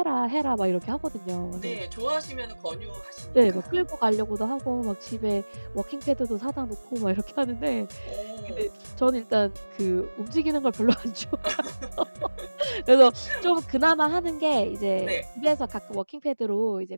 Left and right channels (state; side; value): inverted; both; correlation -1.00